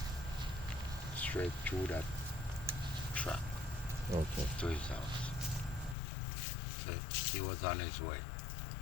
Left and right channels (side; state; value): right; drops out; at 6.0 s